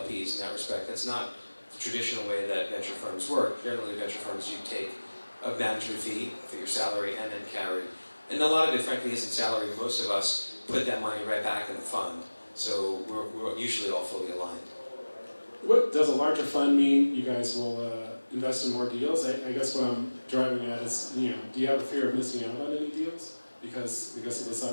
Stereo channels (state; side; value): inverted; both; correlation -1.00